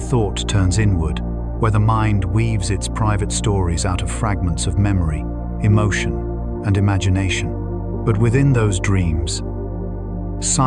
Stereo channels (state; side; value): identical; both; correlation 1.00